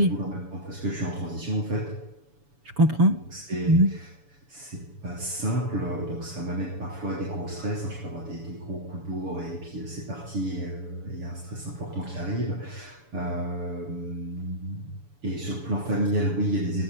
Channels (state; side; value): late; left; 7.0 ms